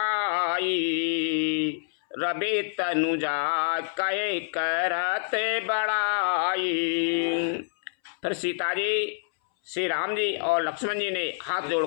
रवि तनुजा कहे करत बड़ाई। फिर सीता जी, श्री राम जी और लक्ष्मण जी ने हाथ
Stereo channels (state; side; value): silent; right; 60 dB below the other